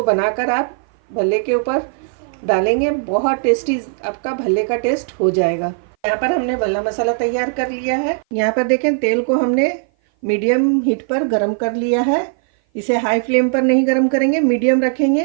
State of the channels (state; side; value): silent; left; 57 dB below the other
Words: बनाकर आप भल्ले के ऊपर डालेंगे बहुत टेस्टी आपका भल्ले का टेस्ट हो जाएगा। यहाँ पर हमने भल्ला मसाला तैयार कर लिया है। यहाँ पर देखें तेल को हमने मीडियम हीट पर गरम कर लिया है। इसे हाई फ्लेम पर नहीं गरम करेंगे, मीडियम रखेंगे।